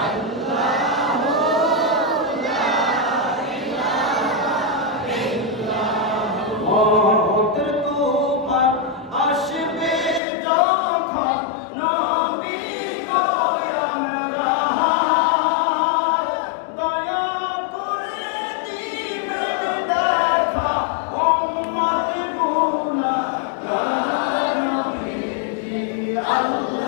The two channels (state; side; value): drops out; right; at 10.2 s